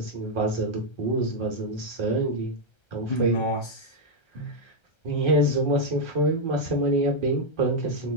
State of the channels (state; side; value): late; right; 1.3 ms